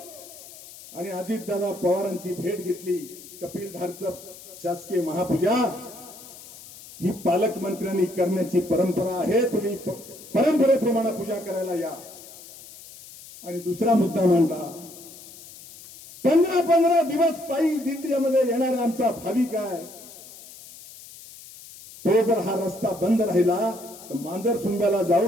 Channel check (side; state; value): left; noise; hiss, 18 dB below the sound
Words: आणि अजितदादा पवारांची भेट घेतली. कपिलधारचं शासकीय महापूजा ही पालकमंत्र्यांनी करण्याची परंपरा आहे. तुम्ही परंपरेप्रमाणे पूजा करायला या. आणि दुसरा मुद्दा मांडला, 15 दिवस पायी दिंडीमध्ये येणारा आमचा भाविक आहे, तो जर हा रस्ता बंद राहिला तर मांजर सुंब्याला